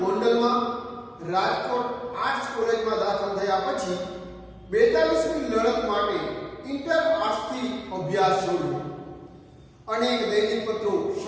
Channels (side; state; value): both; identical; correlation 1.00